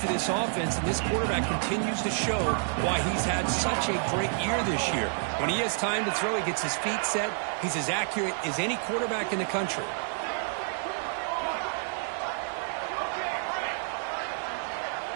this offense, and this quarterback continues to show why he's had such a great year this year. When he has time to throw, he gets his feet set. He's as accurate as any quarterback in the country.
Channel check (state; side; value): silent; left; 59 dB below the other